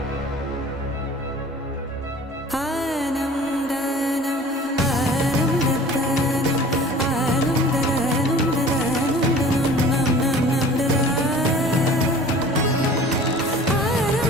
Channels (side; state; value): both; normal; correlation 0.44